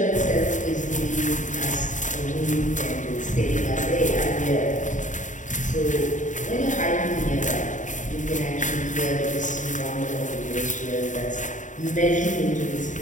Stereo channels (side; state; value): right; late; 0.36 ms